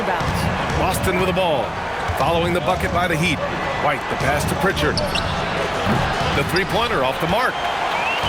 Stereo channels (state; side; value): identical; both; correlation 1.00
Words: Boston with the ball. Following the bucket by the Heat. White, the pass to Pritchard. The three-pointer off the mark.